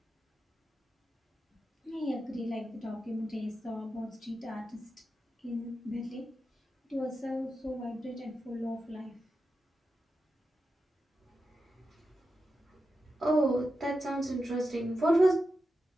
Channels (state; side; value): normal; both; correlation 0.90